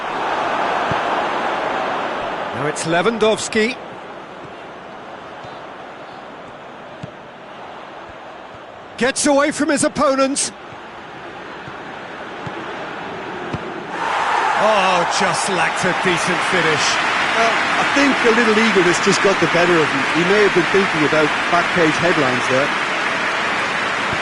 Now it's Lewandowski. Gets away from his opponent. Oh, just lacked a decent finish. I think a little eagerness just got the better of him. He may have been thinking about back-page headlines there.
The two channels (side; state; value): both; identical; correlation 1.00